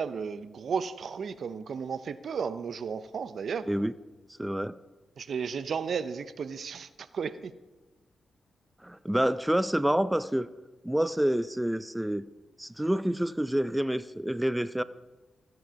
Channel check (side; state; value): both; normal; correlation 0.96